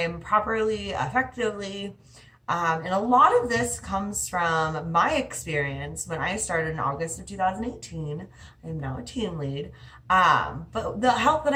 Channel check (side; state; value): both; identical; correlation 1.00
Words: properly, effectively? And a lot of this comes from my experience when I started in August of 2018. I am now a team lead. But the help that